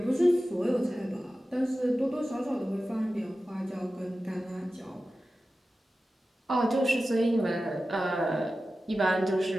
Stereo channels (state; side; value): normal; both; correlation 0.94